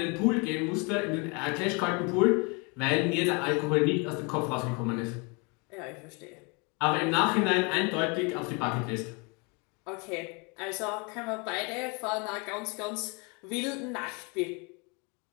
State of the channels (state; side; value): quieter; right; 31.5 dB